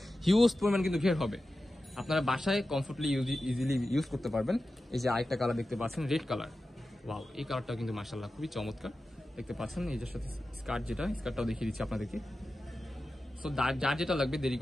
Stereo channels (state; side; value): normal; both; correlation 0.93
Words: হিউজ পরিমাণ কিন্তু ঘের হবে। আপনারা বাসায় কমফোর্টলি ইজিলি ইউজ করতে পারবেন। এই যে আরেকটা কালার দেখতে পাচ্ছেন, রেড কালার, ওয়াও এই কালারটাও কিন্তু মাশাআল্লাহ খুবই চমৎকার দেখতে পাচ্ছেন। এই যে সাথে স্কার্ট, যেটা স্কার্টটাও দেখিয়ে দিচ্ছি আপনাদেরকে। সো যার যেটা লাগবে দেরি